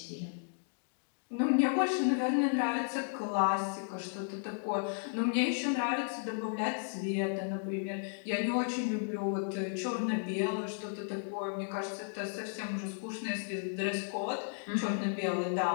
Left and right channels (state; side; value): silent; right; digital silence